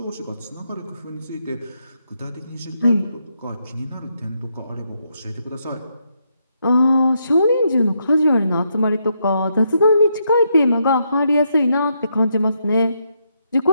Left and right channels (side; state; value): both; inverted; correlation -0.79